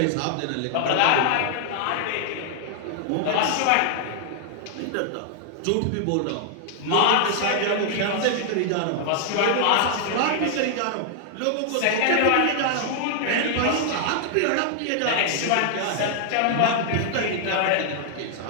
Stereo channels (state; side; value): different; both; correlation 0.00